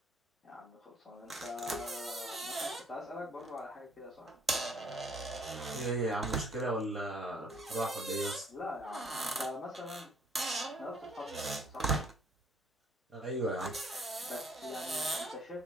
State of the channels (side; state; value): both; normal; correlation 0.61